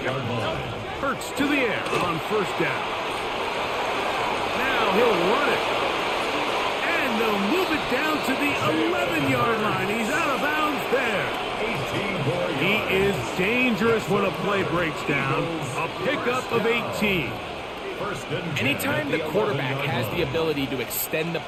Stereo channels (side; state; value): both; identical; correlation 1.00